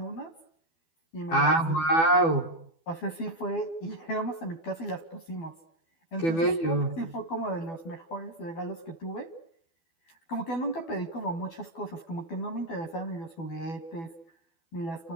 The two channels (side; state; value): right; late; 12 ms